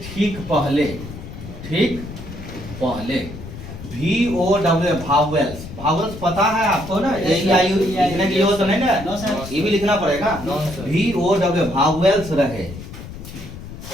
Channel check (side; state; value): left; noise; rumble, 12 dB below the sound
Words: ठीक पहले VOW भावेल्स पता है आपको ना? AEIU लिखने की जरूरत नहीं ना, ये भी लिखना पड़ेगा। VOW भावेल्स रहे